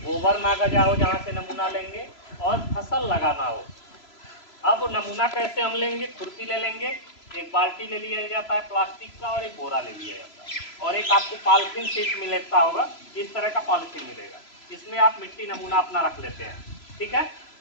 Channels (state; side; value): late; right; 3.0 ms